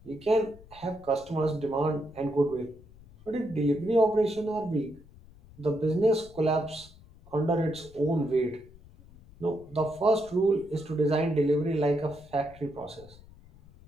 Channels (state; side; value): noise; left; rumble, 23 dB below the sound